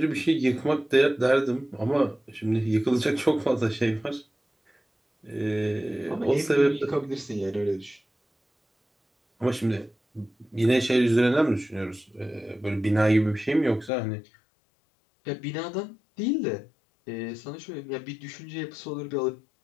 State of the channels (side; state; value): right; drops out; at 13.9 s